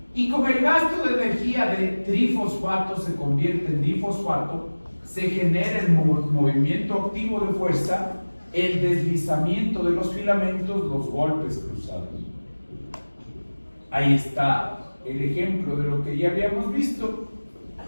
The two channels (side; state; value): both; inverted; correlation -1.00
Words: y como el gasto de energía de trifosfato se convierte en difosfato, se genera el movimiento activo de fuerza, el deslizamiento de los filamentos, los golpes cruzados. Ahí está el ejemplo de lo que ya habíamos visto,